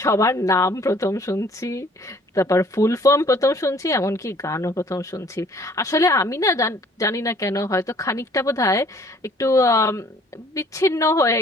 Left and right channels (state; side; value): normal; both; correlation 0.57